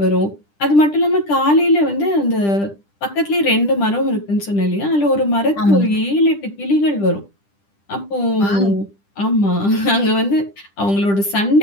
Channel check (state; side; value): late; right; 10 ms